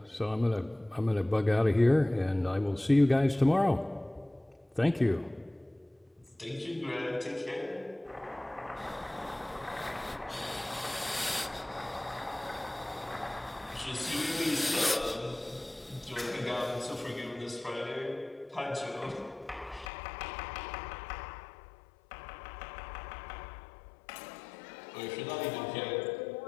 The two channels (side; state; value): right; drops out; at 19.9 s